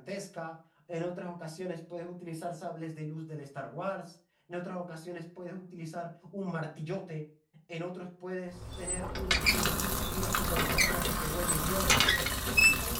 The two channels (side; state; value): both; identical; correlation 1.00